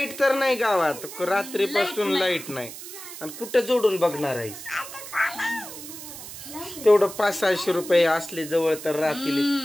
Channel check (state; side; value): noise; right; hiss, 12 dB below the sound